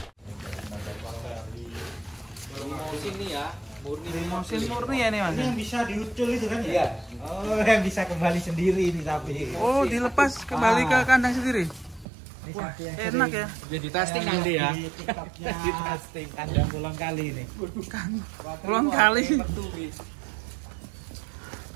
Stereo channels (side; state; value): left; drops out; at 12.1 s